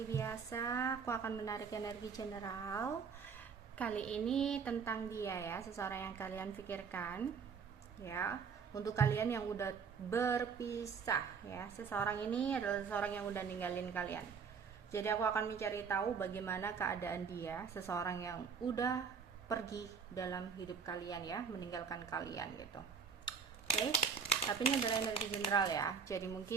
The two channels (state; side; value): quieter; left; 6.0 dB